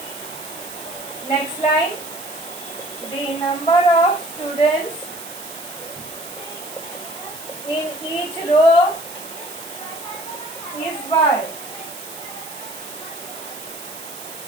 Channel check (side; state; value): right; noise; hiss, 12 dB below the sound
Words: Next line, the number of students in each row is Y.